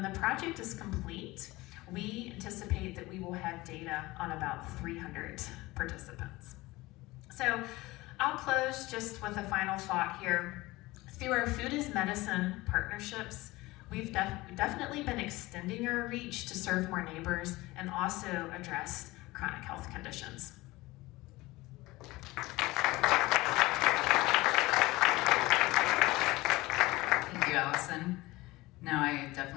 the project is complete, we anticipate that we will have data on about 300 participants. So I'll close just with a final thought here. Through our Food as Medicine partnerships, we've definitely been extending our reach to serve more neighbors and also address chronic health conditions. Thank you, Allison. Now I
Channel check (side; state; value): right; quieter; 20.1 dB